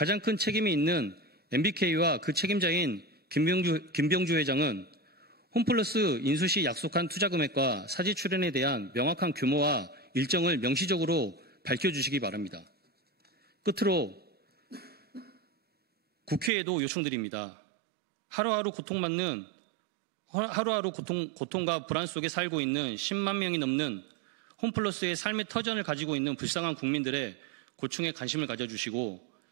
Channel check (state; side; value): drops out; left; at 16.5 s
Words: 큰 책임이 있는 MBK와 그 책임자인 김병주 회장은 홈플러스 인수 시 약속한 투자 금액과 사지 출연에 대한 명확한 규모와 일정을 명시적으로 밝혀주시기 바랍니다. 끝으로 국회에도 요청드립니다. 하루하루 고통과 불안 속에 살고 있는 10만 명이 넘는 홈플러스의 삶의 터전을 가지고 있는 불쌍한 국민들의 고충에 관심을 가져주시고